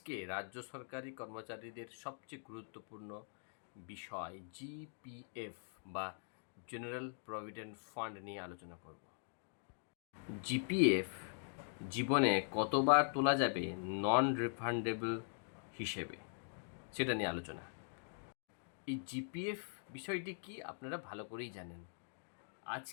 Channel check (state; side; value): silent; right; digital silence